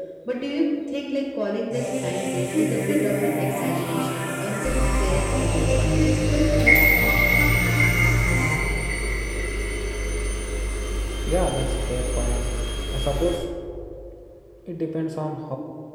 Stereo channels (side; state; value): both; identical; correlation 1.00